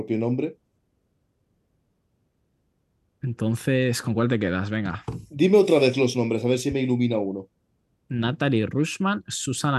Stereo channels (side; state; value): both; identical; correlation 1.00